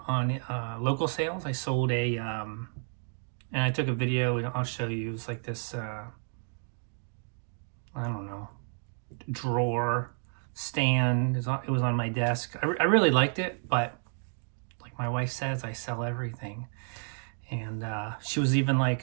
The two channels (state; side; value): silent; left; 57 dB below the other